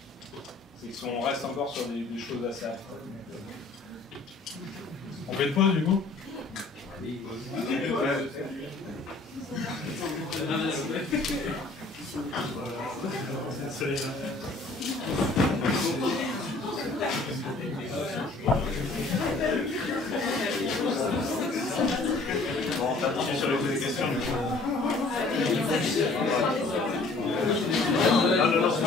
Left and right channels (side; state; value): right; quieter; 3.4 dB